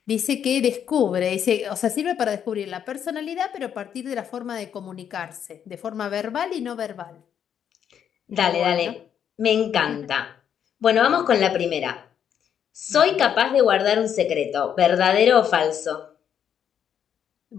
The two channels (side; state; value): right; quieter; 8.7 dB